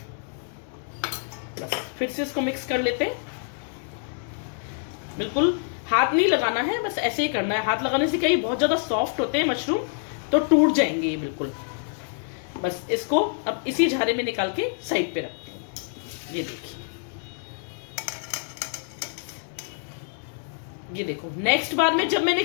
बस फिर से इसको मिक्स कर लेते हैं। बिल्कुल हाथ नहीं लगाना है, बस ऐसे ही करना है। हाथ लगाने से क्या, ये बहुत ज्यादा सॉफ्ट होते हैं मशरूम, तो टूट जाएंगे ये बिल्कुल। बस इसको अब इसी झारे में निकाल के साइड पे रखती हूँ। ये देखिए, ये देखो, नेक्स्ट बार में जब मैंने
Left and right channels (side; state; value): right; silent; 61 dB below the other